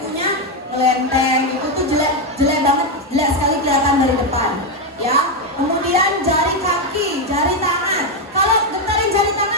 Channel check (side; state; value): both; normal; correlation 0.05